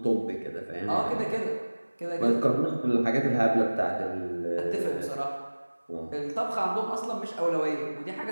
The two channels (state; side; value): inverted; both; correlation -1.00